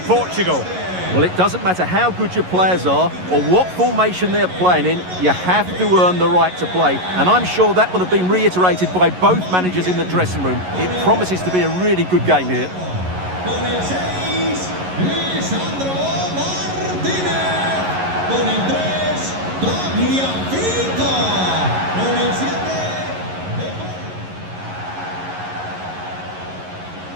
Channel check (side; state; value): left; late; 11 ms